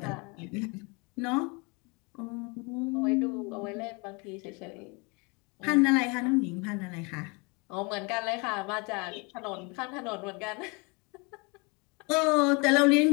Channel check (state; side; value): quieter; right; 30.0 dB